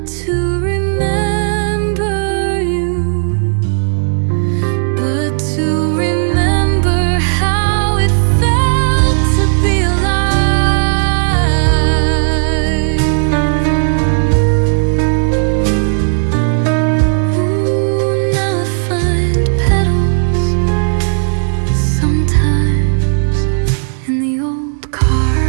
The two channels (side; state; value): left; silent; digital silence